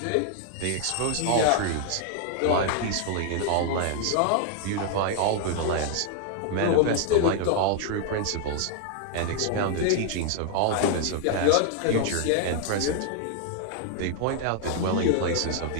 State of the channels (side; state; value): both; different; correlation 0.00